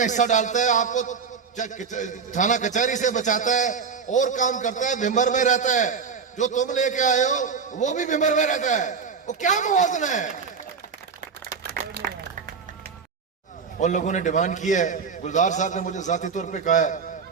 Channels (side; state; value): left; quieter; 5.8 dB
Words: हिस्सा डालता है, आपको थाना कचहरी से बचाता है और काम करता है, भिंबर में रहता है। जो तुम लेके आए हो वो भी भिंबर में रहता है। वो क्या मुवाजना है? उन लोगों ने डिमांड की है, गुलजार साहब ने मुझे जाती तौर पे कहा है,